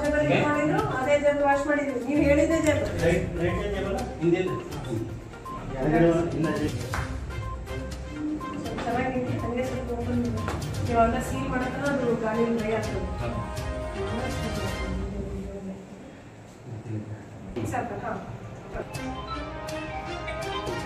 ಜಾಗ ಮಾಡಿದ್ರು ಅದೇ ಜಾಗ ವಾಶ್ ಮಾಡಿದ್ರು. ನೀವು ಹೇಳಿದ್ದೆ ಜಾಗ ಚೆನ್ನಾಗಿದೆ. ಹಂಗೆ ಸ್ವಲ್ಪ ಓಪನ್ ಇವಾಗ ಸೀಲ್ ಮಾಡಕ್ಕೆ ಅದು ಗಾಳಿ ಡ್ರೈ ಆಗ್ತದೆ. ಸ್ವಲ್ಪ ಹಾಂ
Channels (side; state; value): both; identical; correlation 1.00